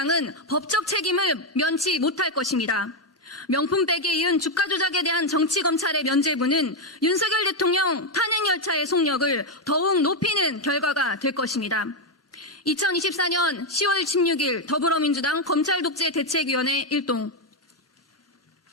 법적 책임을 면치 못할 것입니다. 명품백에 이은 주가 조작에 대한 정치검찰의 면죄부는 윤석열 대통령 탄핵열차의 속력을 더욱 높이는 결과가 될 것입니다. 2024년 10월 16일 더불어민주당 검찰독재대책위원회 1동.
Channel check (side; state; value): both; normal; correlation 0.04